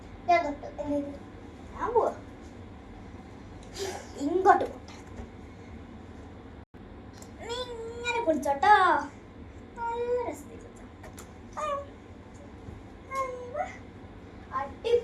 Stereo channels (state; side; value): identical; both; correlation 1.00